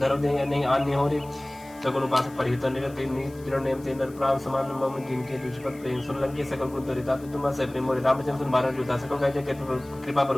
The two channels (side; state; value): left; noise; hiss, 25 dB below the sound